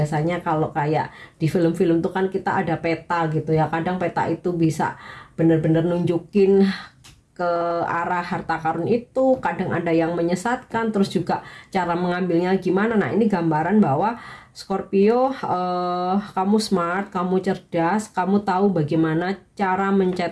kalau kayak di film-film tuh kan kita ada peta gitu ya, kadang peta itu bisa bener-bener nunjukin ke arah harta karun itu, kadang ada yang menyesatkan, terus juga cara mengambilnya gimana. Nah ini gambaran bahwa Scorpio, kamu smart, kamu cerdas, kamu tahu bagaimana cara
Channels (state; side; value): identical; both; correlation 1.00